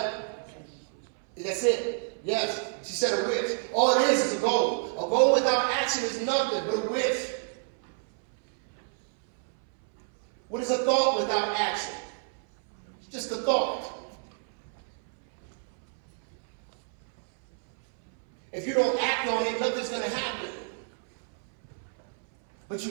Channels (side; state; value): left; silent; 59 dB below the other